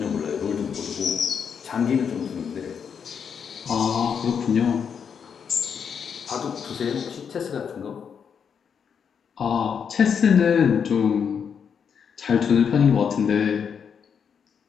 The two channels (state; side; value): quieter; right; 7.0 dB